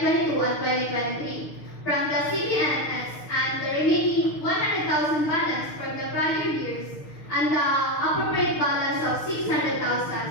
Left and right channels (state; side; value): late; right; 6.5 ms